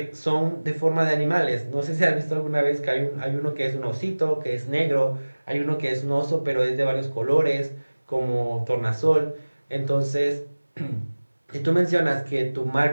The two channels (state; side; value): inverted; both; correlation -1.00